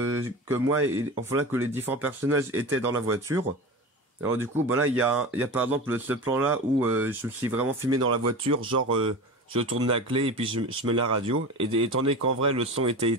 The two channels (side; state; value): both; normal; correlation 0.30